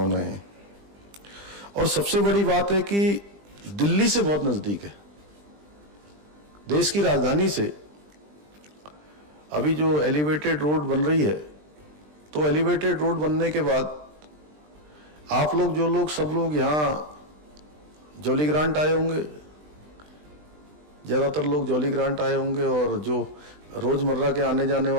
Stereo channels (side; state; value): left; late; 20 ms